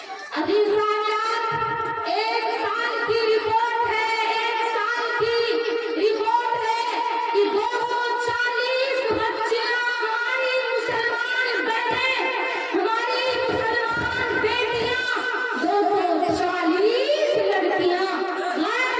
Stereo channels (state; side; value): identical; both; correlation 1.00